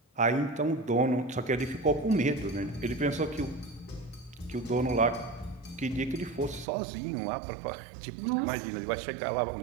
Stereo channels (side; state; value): left; drops out; at 6.7 s